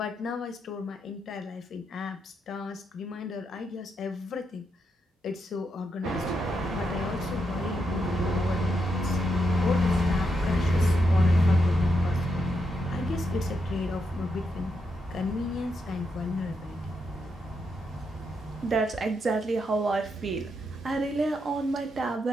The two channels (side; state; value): both; normal; correlation 0.82